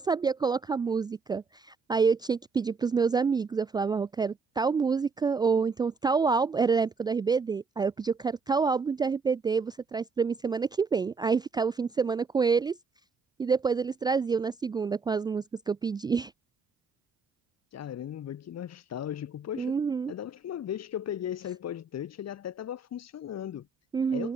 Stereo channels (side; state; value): left; quieter; 4.4 dB